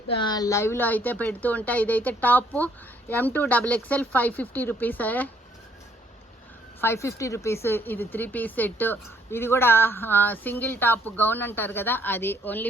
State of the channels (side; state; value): both; normal; correlation 0.66